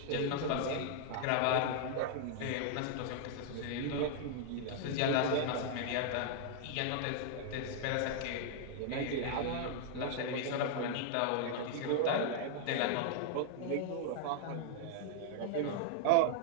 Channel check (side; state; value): both; different; correlation -0.01